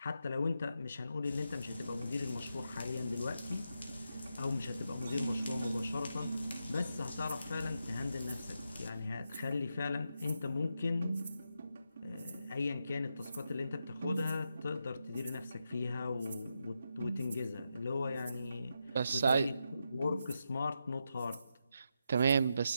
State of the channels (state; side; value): inverted; both; correlation -0.85